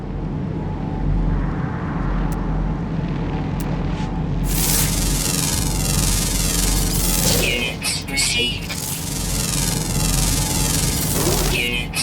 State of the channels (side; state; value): both; identical; correlation 1.00